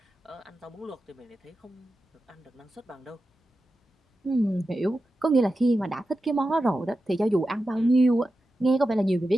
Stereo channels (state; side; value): normal; both; correlation 0.92